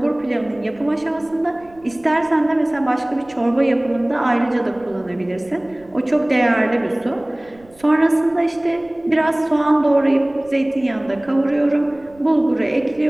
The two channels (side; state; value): right; noise; rumble, 27 dB below the sound